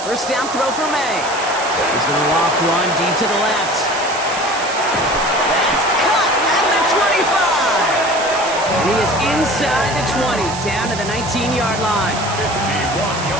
First down throw for May. He's going to loft one deep to the left. That's cut at the 25. And he is inside the 20, down to the 19-yard line.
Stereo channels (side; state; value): right; noise; hiss, 10 dB below the sound